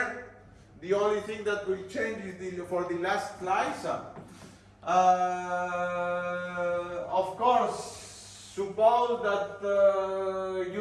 The only thing that will change is for the last slice. Of course, suppose that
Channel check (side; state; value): both; identical; correlation 1.00